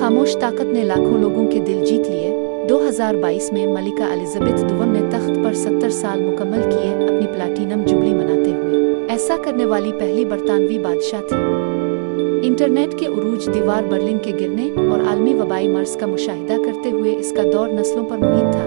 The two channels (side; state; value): left; silent; digital silence